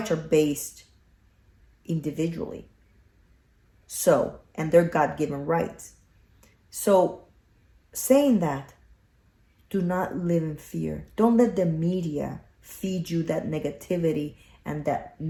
are based individually. So, and they're God-given rights. So, saying that, do not live in fear. Don't let the media feed you that negativity and that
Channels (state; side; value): identical; both; correlation 1.00